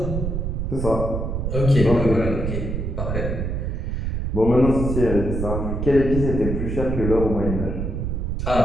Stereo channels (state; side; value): noise; right; rumble, 2 dB below the sound